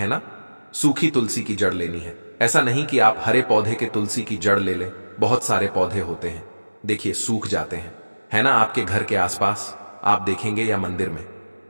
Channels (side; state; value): both; inverted; correlation -1.00